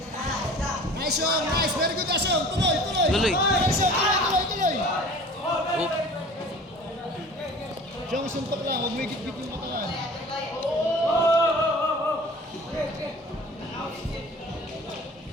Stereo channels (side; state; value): both; normal; correlation 0.43